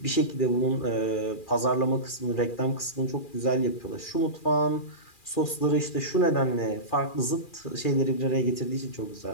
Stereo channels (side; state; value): right; late; 2.4 ms